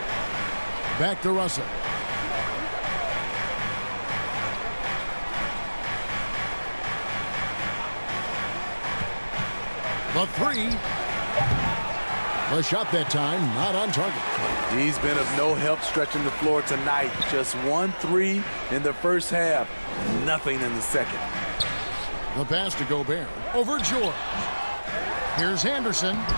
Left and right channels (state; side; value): inverted; both; correlation -1.00